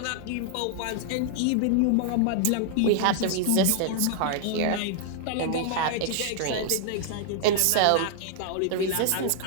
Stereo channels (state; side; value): different; both; correlation 0.00